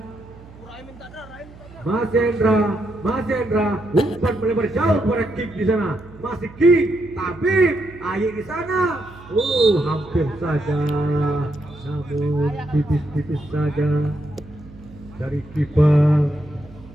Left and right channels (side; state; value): right; noise; hum, 20 dB below the sound